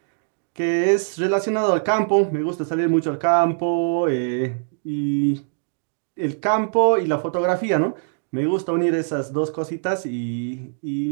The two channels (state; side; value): silent; left; digital silence